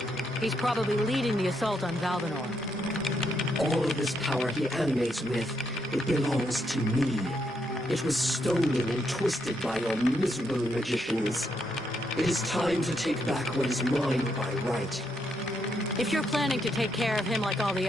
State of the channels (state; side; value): normal; both; correlation 0.78